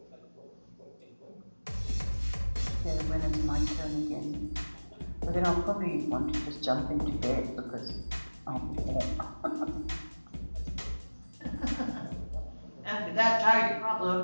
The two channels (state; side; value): inverted; both; correlation -1.00